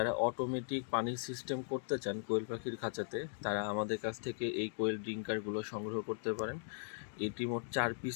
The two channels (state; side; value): silent; right; digital silence